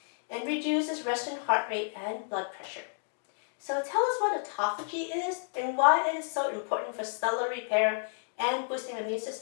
and reduces resting heart rate and blood pressure. So tell us what autophagy is and why it is so important for cellular repair and boosting the immune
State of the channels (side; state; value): right; silent; digital silence